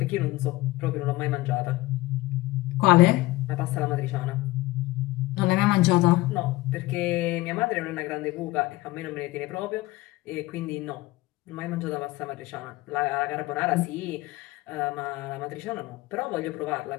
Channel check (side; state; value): right; quieter; 19.5 dB